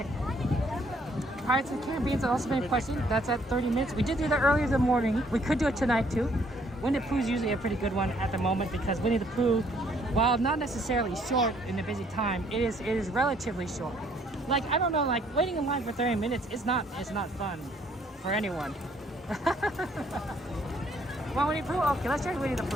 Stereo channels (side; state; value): both; normal; correlation 0.65